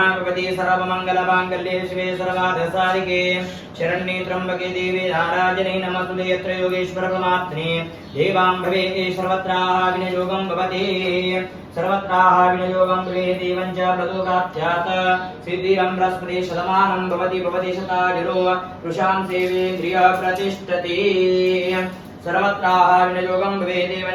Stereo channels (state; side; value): identical; both; correlation 1.00